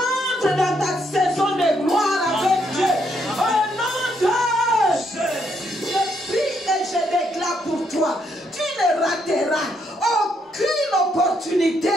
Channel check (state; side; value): normal; both; correlation 0.74